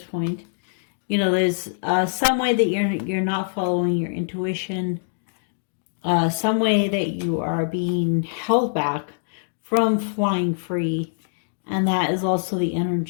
point. You know, there's some way that you're not following your intuition, some way that you are being held back from flying free, and that is also the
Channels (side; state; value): right; silent; digital silence